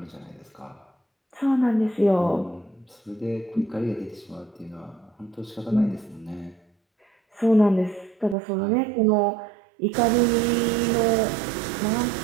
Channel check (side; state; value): left; drops out; at 8.3 s